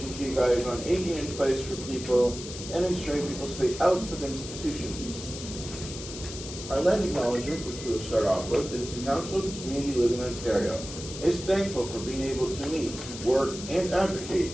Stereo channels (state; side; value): noise; left; hiss, 10 dB below the sound